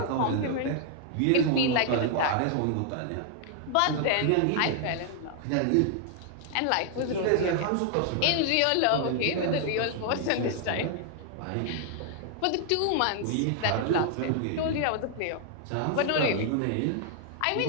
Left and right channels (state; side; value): different; both; correlation 0.00